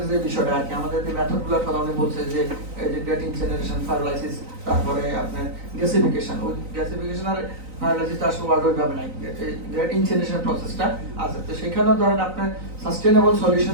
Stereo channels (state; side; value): late; left; 3.9 ms